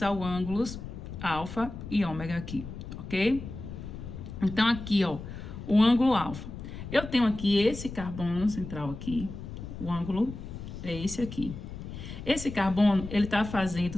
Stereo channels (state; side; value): noise; left; rumble, 10 dB below the sound